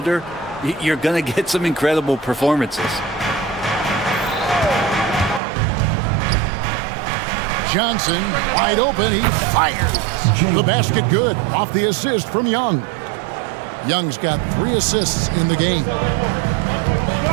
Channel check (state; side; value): drops out; left; at 5.4 s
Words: you're going to get some incredible performances. Johnson wide open. He fires. The basket good off the assist from Young. Young's got 3 assists in the game.